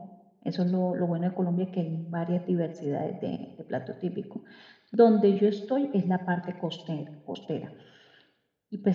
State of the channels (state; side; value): identical; both; correlation 1.00